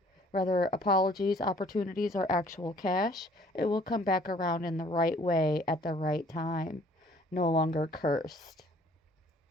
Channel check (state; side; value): normal; both; correlation 0.57